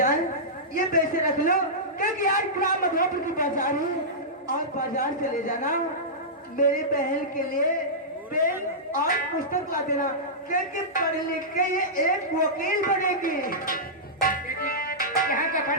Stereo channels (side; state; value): both; normal; correlation -0.14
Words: ये पैसे रख लो, क्योंकि आज ग्राम मधुपुर की बाजार है और बाजार चले जाना, मेरी बहन के लिए पेन और पुस्तक ला देना, क्योंकि पढ़ लिख के ये एक वकील बनेगी। यहाँ का